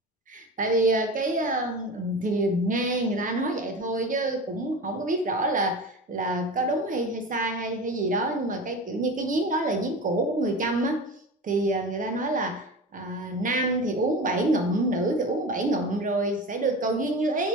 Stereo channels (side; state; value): both; normal; correlation 0.31